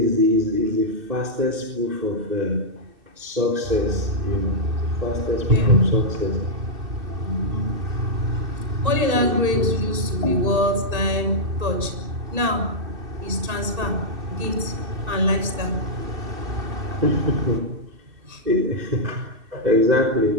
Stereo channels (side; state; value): left; late; 2.6 ms